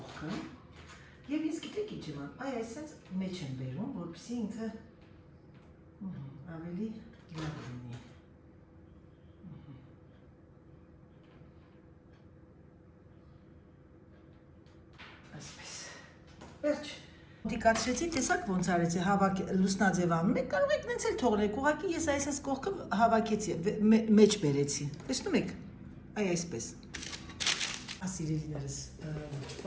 և ինձ գիտեք ինչ եմ անում, այսպես մեջ եմ բերում, որպեսզի ինքը ավելի լավ լինի։ Վերջ, դիկացրեցի, տեսակ ոնց արեցի, լուսնաձև անում եք, կարող եք նենց էլ թողնեք, ուղղակի ես այսպես կողքը հավաքեցի, մեջ բերեցի, տեսնում եք, այսպես, սիրելիներս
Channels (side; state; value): both; identical; correlation 1.00